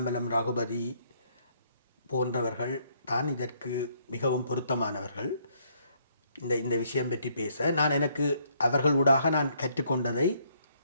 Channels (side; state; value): both; inverted; correlation -0.68